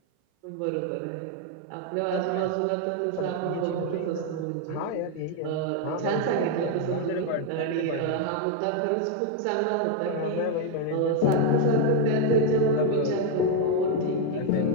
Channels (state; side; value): different; both; correlation 0.01